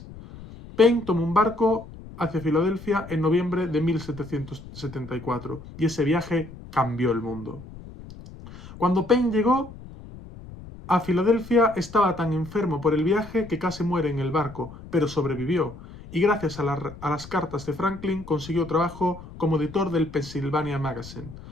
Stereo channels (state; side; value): noise; left; rumble, 16 dB below the sound